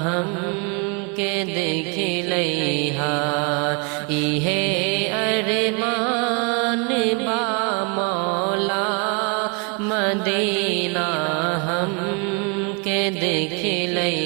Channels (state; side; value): quieter; left; 32.3 dB